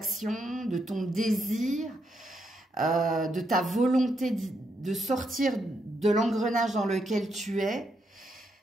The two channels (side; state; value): both; normal; correlation 0.79